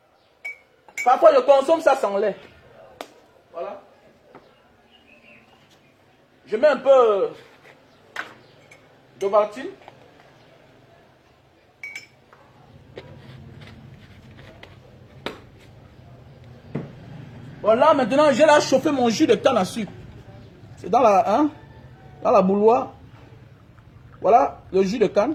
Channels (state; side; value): identical; both; correlation 1.00